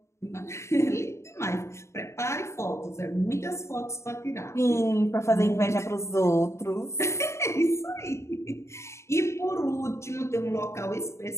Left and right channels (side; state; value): right; late; 0.13 ms